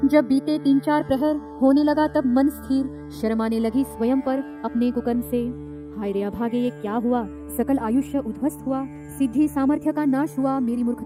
जब बीते 3-4 प्रहर होने लगा तब मन स्थिर, शर्म आने लगी स्वयं पर अपने कुकर्म से। हाय रे अभागे, ये क्या हुआ? सकल आयुष्य उद्ध्वस्त हुआ, सिद्धि सामर्थ्य का नाश हुआ मेरी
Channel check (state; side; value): identical; both; correlation 1.00